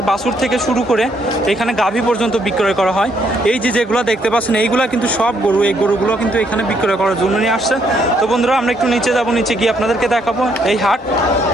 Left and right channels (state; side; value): normal; both; correlation 0.71